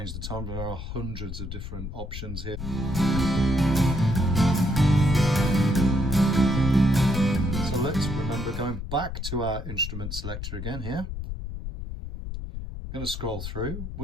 the tone. There are hundreds of different options here. So let's remember going back to our instrument selector again here. I'm going to scroll through.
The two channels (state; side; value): noise; left; rumble, 7 dB below the sound